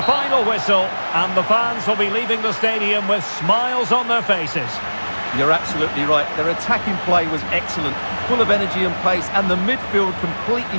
final whistle, and the fans will be leaving the stadium with smiles on their faces. You're absolutely right. Their attacking play was excellent, full of energy and pace, and the midfield completely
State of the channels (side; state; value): both; inverted; correlation -1.00